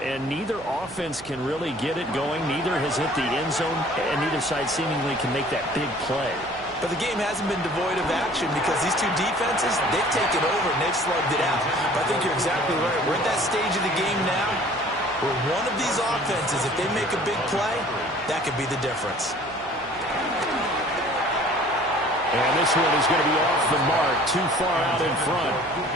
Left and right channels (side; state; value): right; noise; hum, 20 dB below the sound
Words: neither offense can really get it going. Neither has hit the end zone, and neither side seemingly can make that big play. But the game hasn't been devoid of action because these two defenses, they've taken over and they've slugged it out. But I think you're exactly right. We're at that stage of the game now where one of these offenses, if they make a big play, that could be the difference. And this one is going to be off the mark, too far out in front.